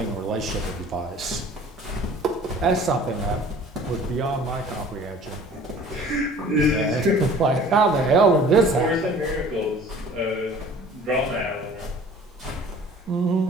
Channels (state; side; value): normal; both; correlation 0.48